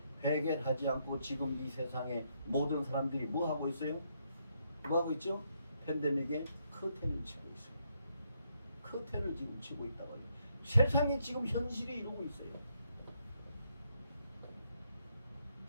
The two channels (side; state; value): both; inverted; correlation -0.76